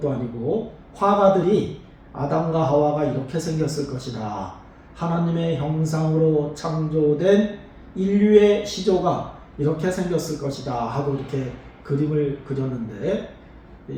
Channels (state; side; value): identical; both; correlation 1.00